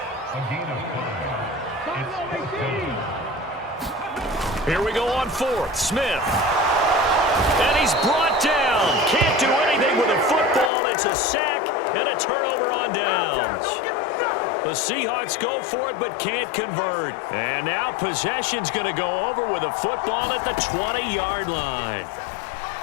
Here we go on 4th. Smith. And he's brought down. Can't do anything with a football. It's a sack and a turnover on downs. The Seahawks go for it but can't convert. And now possession's going to go over with a football at the 20-yard line.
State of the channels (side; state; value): right; drops out; at 10.7 s